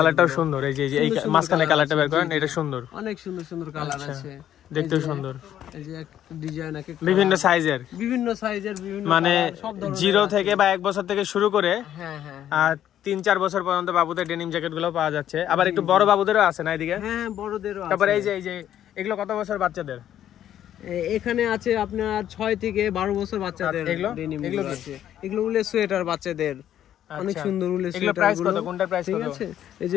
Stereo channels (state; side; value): quieter; right; 11.0 dB